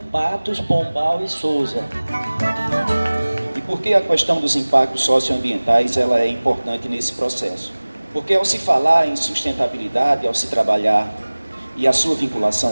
Patos, Pombal e Sousa. E por que a questão dos impactos socioambientais ela é importante nesse processo? Porque ao se falar em sustentabilidade, ao se trabalhar e a sua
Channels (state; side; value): inverted; both; correlation -1.00